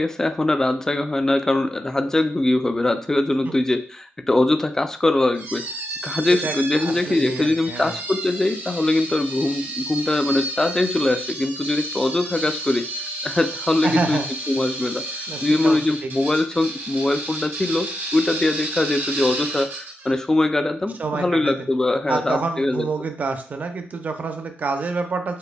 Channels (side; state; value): both; normal; correlation 0.88